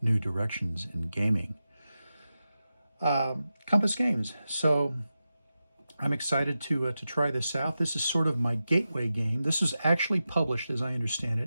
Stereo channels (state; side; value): inverted; both; correlation -0.92